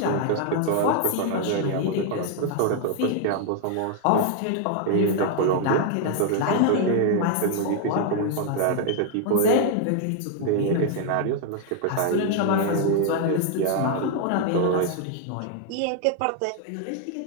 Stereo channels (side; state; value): both; different; correlation 0.00